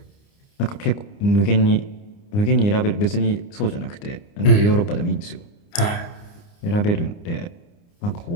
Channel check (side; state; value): right; late; 29 ms